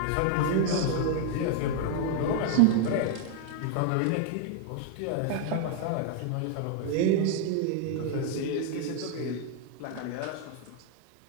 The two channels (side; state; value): both; different; correlation 0.00